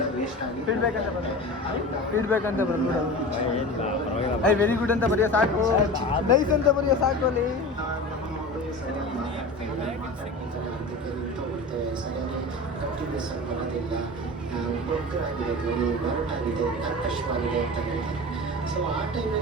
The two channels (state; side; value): normal; both; correlation 0.32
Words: ಫೀಡ್ಬ್ಯಾಕ್ ಅಂತ ಬಂದ್ಬಿಡು ಐ ವೆರಿ ಗುಡ್ ಅಂತ ಬರೆಯೋ ಸಾಕು ನೈಸ್ ಅಂತ ಬರೆಯೋ ಸಾಕು ಅಲ್ಲಿ